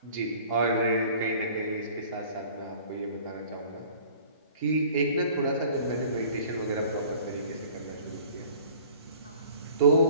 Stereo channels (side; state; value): both; inverted; correlation -0.48